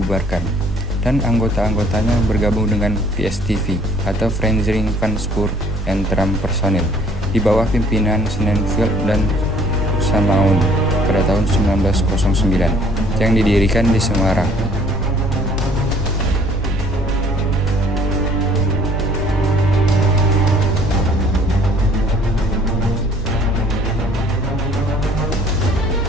dan anggota-anggotanya bergabung dengan PSTV atau Vereniging van Spoor en Tram Personeel di bawah pimpinan Sonnenfeld dan Samaun pada tahun 1909 yang didirikan di Semarang.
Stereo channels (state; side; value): normal; both; correlation 0.58